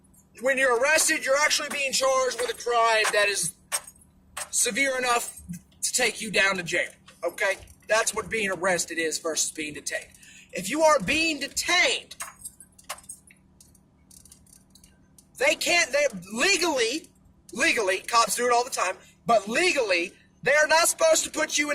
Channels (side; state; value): both; identical; correlation 1.00